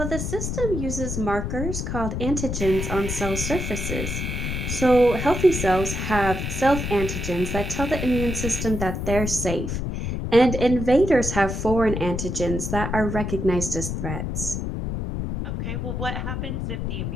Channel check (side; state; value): left; noise; rumble, 3 dB below the sound